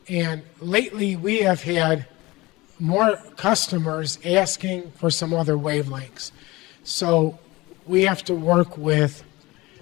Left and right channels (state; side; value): quieter; right; 21.1 dB